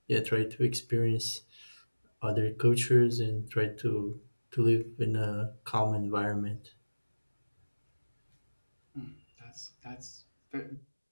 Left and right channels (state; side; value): inverted; both; correlation -1.00